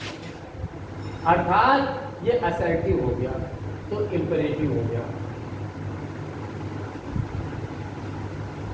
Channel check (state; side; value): identical; both; correlation 1.00